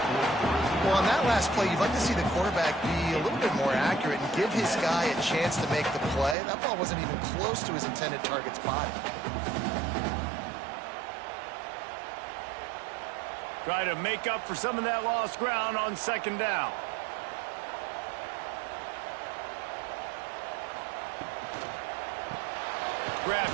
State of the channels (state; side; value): drops out; left; at 6.4 s